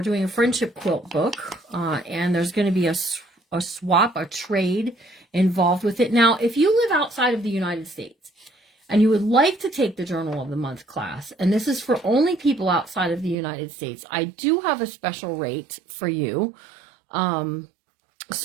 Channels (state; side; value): drops out; left; at 13.4 s